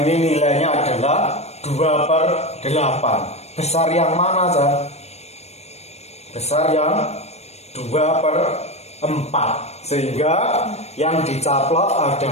ini nilainya adalah 2/8. Besar yang mana, Zah? Besar yang 2/4, sehingga yang dicaplok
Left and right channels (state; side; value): late; right; 0.31 ms